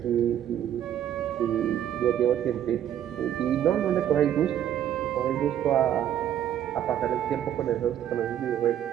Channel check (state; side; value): quieter; left; 10.7 dB